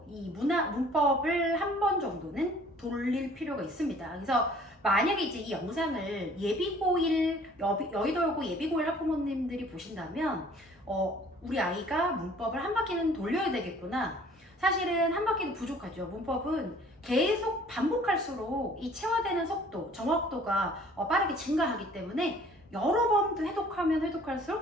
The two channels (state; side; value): normal; both; correlation 0.53